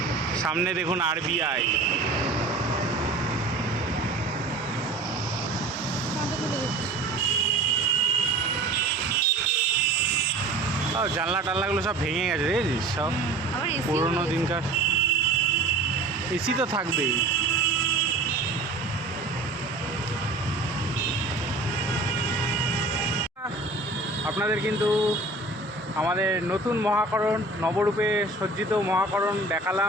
সামনে দেখুন আরবিআই। জানলা টাল্লাগুলো সব ভেঙে গেছে, দেখেছিস সব পুরোনো দিনকার। এসি তো থাকবেই। আপনাদের কিন্তু আমাদের নতুন মহাকরণ, নবরূপে সজ্জিত মহাকরণ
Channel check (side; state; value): left; quieter; 3.1 dB